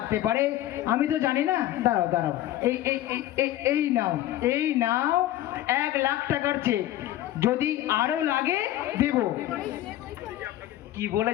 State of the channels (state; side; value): quieter; right; 14.0 dB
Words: পারে আমি তো জানি না। দাঁড়াও দাঁড়াও, এই এই এই- এই নাও, এই নাও 1 লাখ টাকার চেক, যদি আরো লাগে দেব। কি